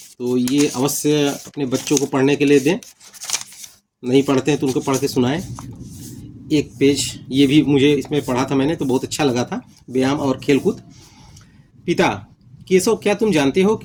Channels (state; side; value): identical; both; correlation 1.00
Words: तो ये अवश्य अपने बच्चों को पढ़ने के लिए दें, नहीं पढ़ते हैं तो उनको पढ़ के सुनाएं। एक पेज ये भी मुझे इसमें पढ़ा था मैंने, तो बहुत अच्छा लगा था, व्यायाम और खेलकूद। पिता, केशव, क्या तुम जानते हो